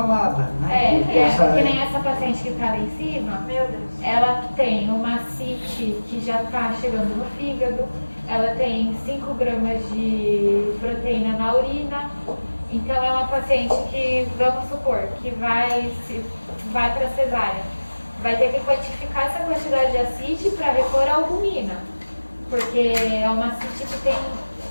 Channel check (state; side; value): inverted; both; correlation -1.00